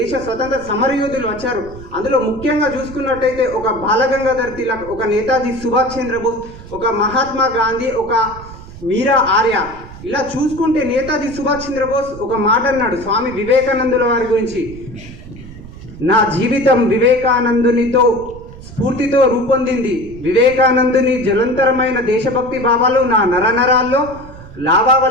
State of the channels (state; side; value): noise; right; rumble, 16 dB below the sound